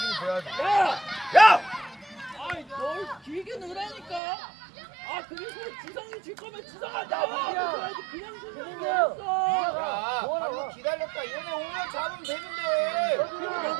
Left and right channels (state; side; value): drops out; left; at 4.2 s